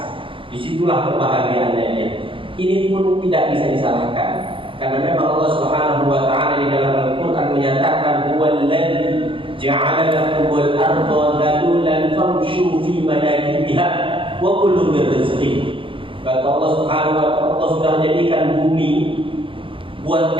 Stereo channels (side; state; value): left; late; 0.25 ms